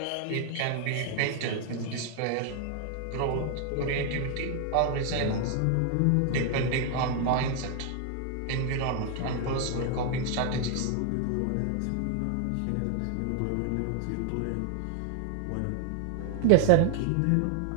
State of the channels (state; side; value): different; both; correlation 0.00